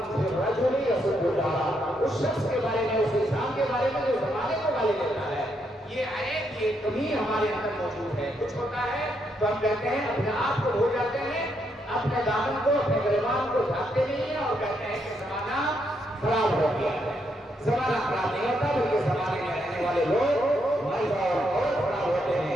فی الرجل یسب الدار، اس شخص کے بارے میں، اس انسان کے بارے میں جو زمانے کو گالی دیتا ہے، یہ عیب، یہ کمی ہمارے اندر موجود ہے۔ کچھ ہوتا ہے تو ہم کہتے ہیں، اپنے آپ کو بھول جاتے ہیں، اپنے دامن کو، اپنے گریبان کو ڈھانپتے نہیں ہیں اور کہتے ہیں کہ زمانہ خراب ہو گیا ہے۔ زمانہ خراب نہیں ہوتا، بلکہ زمانے میں رہنے والے لوگ مرد اور خراب ہوتے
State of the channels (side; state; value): both; normal; correlation 0.77